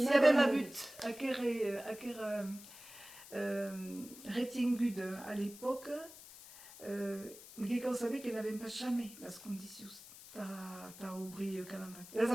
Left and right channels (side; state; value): left; noise; hiss, 17 dB below the sound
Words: y avait ma but, à quel retingude à l'époque, quelqu'un savait qu'elle n'avait pas jamais les conditions. T'as ouvert le calendrier. Elles